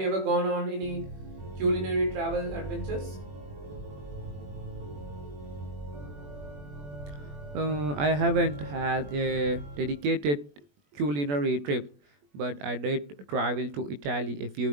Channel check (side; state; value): left; late; 21 ms